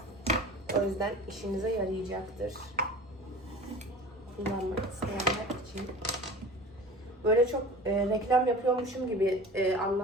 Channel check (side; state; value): both; normal; correlation 0.38